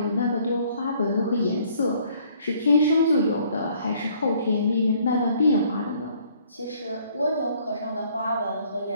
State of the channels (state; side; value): inverted; both; correlation -0.61